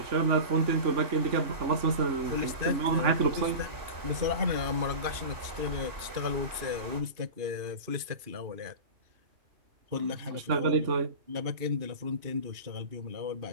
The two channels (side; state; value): left; late; 2.5 ms